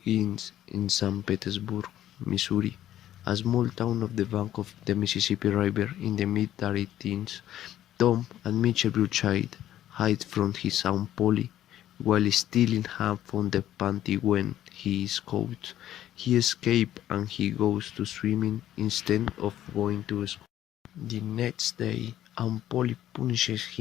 in St. Petersburg, Missouri, a small town off the bank of the Mississippi River in the mid-teens. Tom and Mitchell Bruchide hide from his Aunt Polly while stealing ham from the pantry when he is caught. He escapes and he goes to swimming instead of going to school. The next day, Aunt Polly punishes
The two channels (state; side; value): quieter; right; 12.4 dB